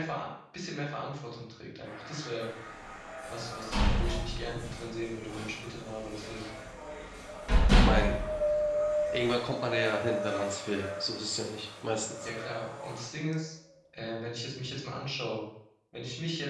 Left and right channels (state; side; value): identical; both; correlation 1.00